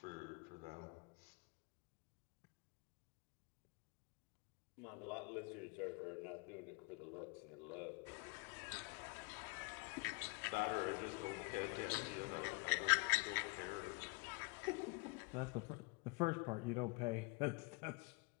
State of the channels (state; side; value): quieter; right; 29.4 dB